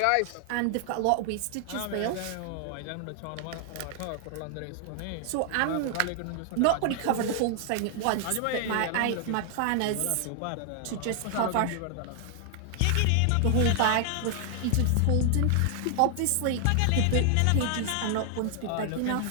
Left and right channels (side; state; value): both; different; correlation 0.00